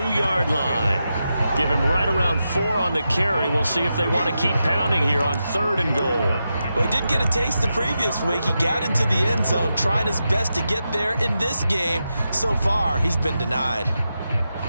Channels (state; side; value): inverted; both; correlation -0.88